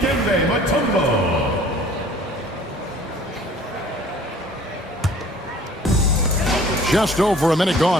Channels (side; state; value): both; normal; correlation 0.51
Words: Mutombo. Just over a minute